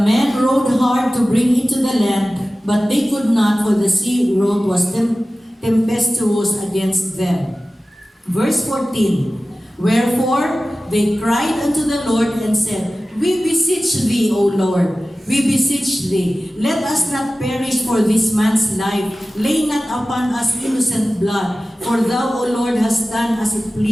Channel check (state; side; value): normal; both; correlation 0.96